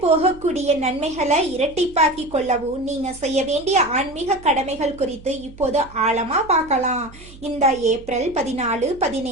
நன்மைகளை இரட்டிப்பாக்கி கொள்ளவும் நீங்க செய்ய வேண்டிய ஆன்மீக கடமைகள் குறித்து இப்போது ஆழமா பார்க்கலாம். இந்த ஏப்ரல் 14,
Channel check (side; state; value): right; noise; hum, 20 dB below the sound